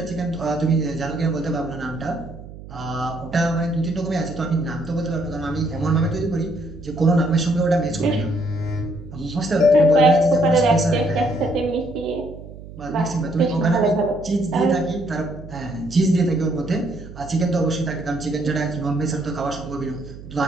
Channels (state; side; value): noise; right; hum, 15 dB below the sound